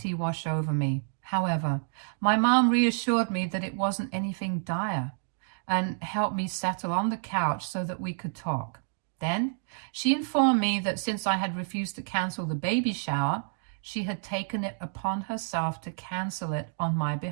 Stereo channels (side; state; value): left; silent; digital silence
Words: wash over me. However, my mom reassured me that it wasn't anything dire and helped me settle on the couch so that we could talk. Then, she informed me that since I had refused to cancel the baby shower, she had taken it upon herself to cancel it on my